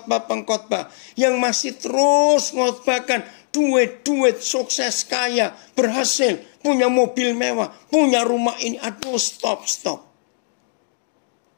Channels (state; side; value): silent; right; digital silence